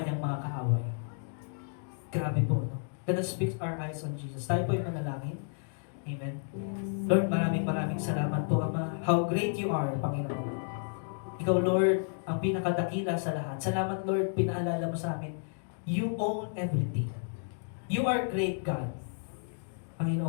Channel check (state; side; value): silent; right; digital silence